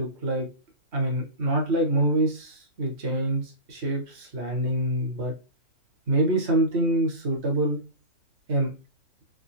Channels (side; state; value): left; late; 3.2 ms